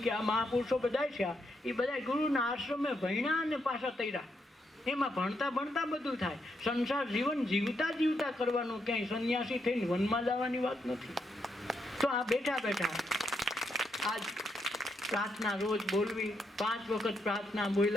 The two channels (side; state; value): both; normal; correlation 0.79